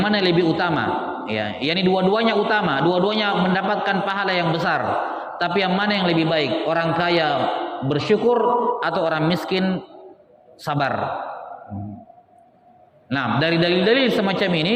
mana lebih utama? Ya, yakni dua-duanya utama, dua-duanya mendapatkan pahala yang besar. Tapi yang mana yang lebih baik? Orang kaya bersyukur atau orang miskin sabar. Nah, dari dalil-dalil semacam ini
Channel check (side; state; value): both; identical; correlation 1.00